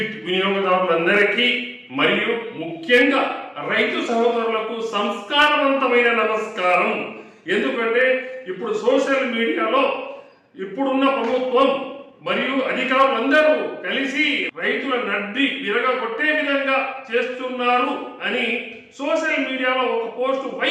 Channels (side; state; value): both; identical; correlation 1.00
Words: వినియోగదారులందరికీ మరియు ముఖ్యంగా రైతు సహోదరులకు సంస్కారవంతమైన నమస్కారం. ఎందుకంటే ఇప్పుడు సోషల్ మీడియాలో ఇప్పుడున్న ప్రభుత్వం మరియు అధికారులందరూ కలిసి రైతుల నడ్డి విరగొట్టే విధంగా చేస్తున్నారు అని సోషల్ మీడియాలో ఒక పోస్ట్